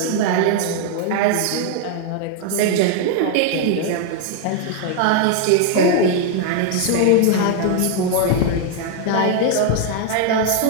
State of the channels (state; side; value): different; both; correlation 0.00